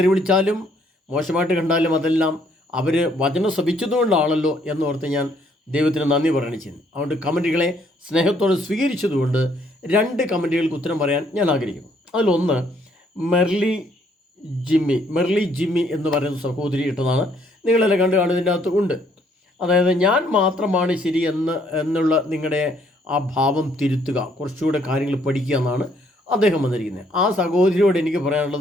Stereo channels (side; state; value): both; normal; correlation 0.67